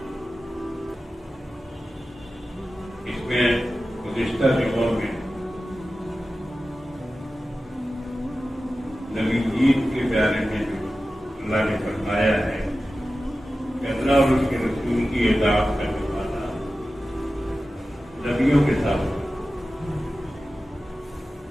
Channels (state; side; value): normal; both; correlation 0.94